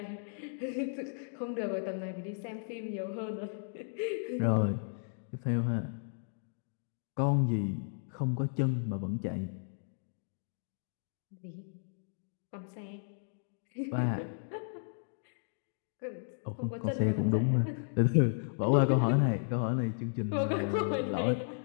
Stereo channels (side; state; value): right; silent; digital silence